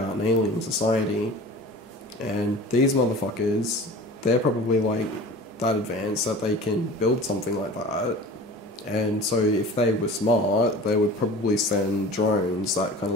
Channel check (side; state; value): both; normal; correlation 0.39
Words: an alien society, and these motherfuckers, they're probably like that advanced that they can build something like that. And so if they were smart, they would probably send drones that kind of